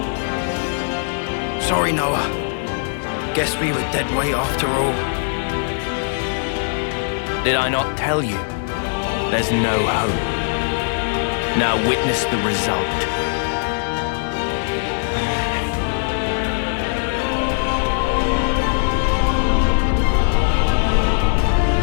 Sorry, Noah. Guess we were dead weight after all. Did I not tell you? There's no hope. Now witness the result.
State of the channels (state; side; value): silent; right; digital silence